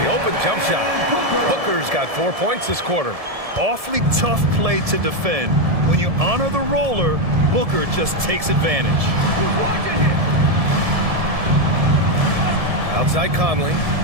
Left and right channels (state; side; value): late; left; 1.7 ms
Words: the open jump shot. Booker's got 4 points this quarter. Awfully tough play to defend. When you honor the roller, Booker just takes advantage. Outside Conley.